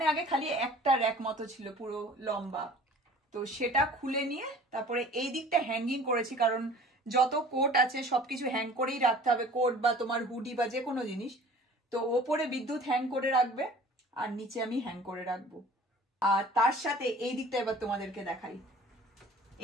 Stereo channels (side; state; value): both; normal; correlation 0.47